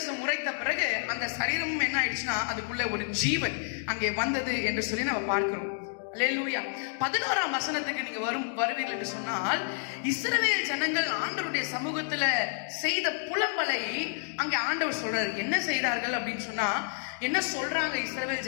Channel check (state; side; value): silent; right; digital silence